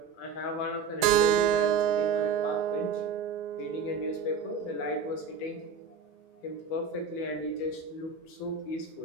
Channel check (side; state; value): left; quieter; 5.8 dB